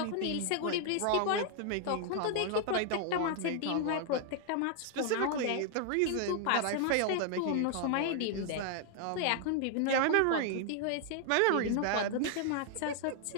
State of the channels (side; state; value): both; different; correlation 0.00